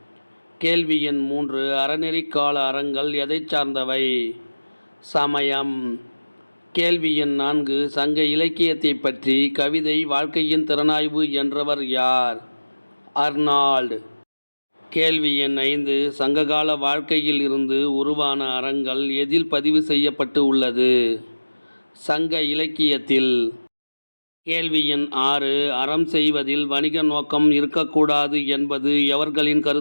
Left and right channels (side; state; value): both; inverted; correlation -1.00